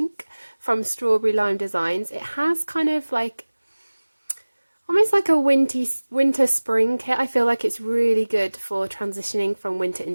from StrawberryLime Designs. It has kind of like almost like a winter spring kit. I feel like it's really good for transitioning from winter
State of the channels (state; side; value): inverted; both; correlation -1.00